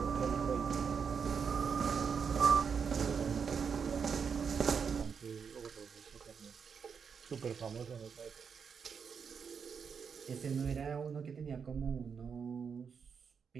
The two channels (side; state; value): left; quieter; 6.4 dB